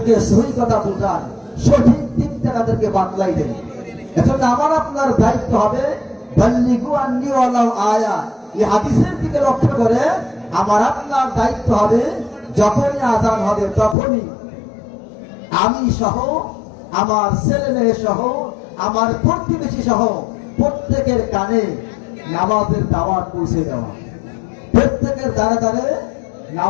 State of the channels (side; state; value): right; drops out; at 14.0 s